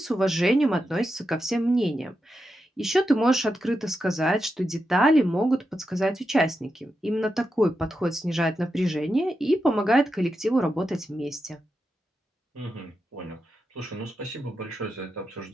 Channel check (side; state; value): both; normal; correlation 0.87